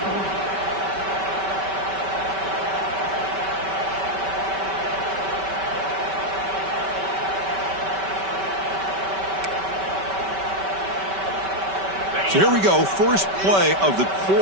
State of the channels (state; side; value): late; left; 5.2 ms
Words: So here we go, first play of the